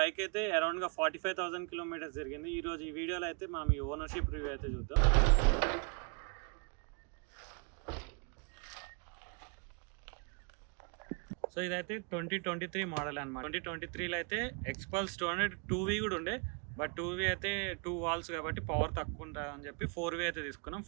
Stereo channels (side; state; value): left; quieter; 36.3 dB